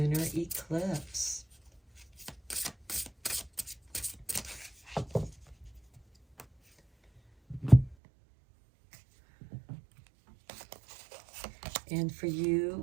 eclipse. And for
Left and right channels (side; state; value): left; drops out; at 8.0 s